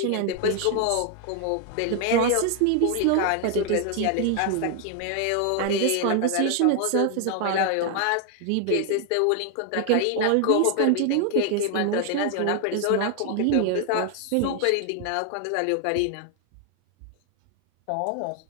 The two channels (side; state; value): both; different; correlation 0.00